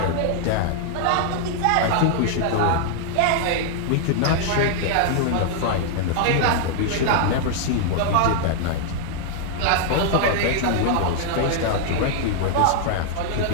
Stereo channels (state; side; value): different; both; correlation -0.01